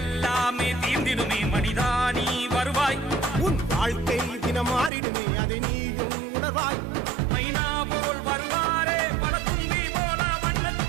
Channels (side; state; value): left; drops out; at 4.9 s